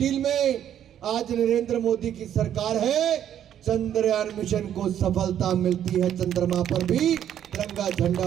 में, आज नरेंद्र मोदी की सरकार है, चंद्रयान मिशन को सफलता मिलती है, चंद्रमा पर भी तिरंगा झंडा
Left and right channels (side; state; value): left; quieter; 10.2 dB